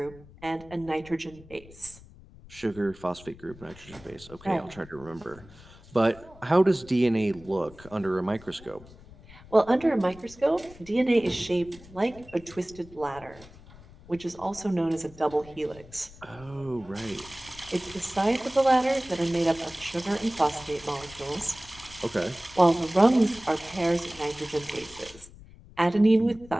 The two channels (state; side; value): noise; left; rumble, 21 dB below the sound